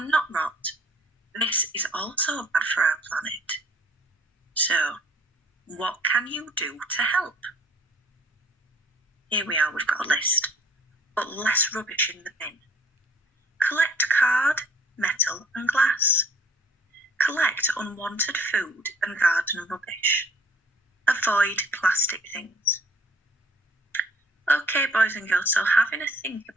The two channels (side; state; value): both; normal; correlation 0.55